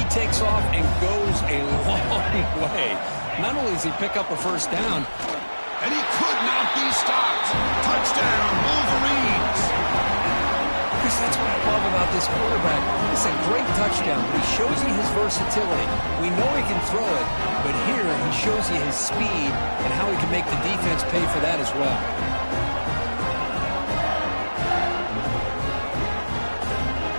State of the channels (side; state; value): both; inverted; correlation -1.00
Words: takes off and goes a long way. Not only does he pick up a first down, and he could not be stopped. Touchdown, Wolverines. Chris, that's what I love about this quarterback. It's a great touchdown, but he shows you his versatility. We know he can throw it, but here he shows you his speed and how he can make the defense pay for that as well.